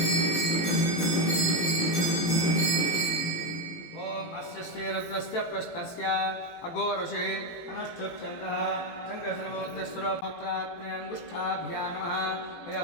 अघोरषे अनुष्ठुप्यन्तः शङ्करसर्वोत्तरसुरपात्रात्मयङ्गुष्ठाभ्या नमः मया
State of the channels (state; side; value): late; right; 18 ms